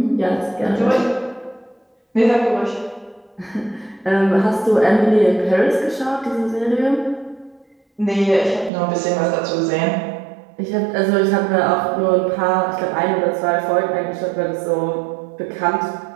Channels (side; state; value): left; drops out; at 8.7 s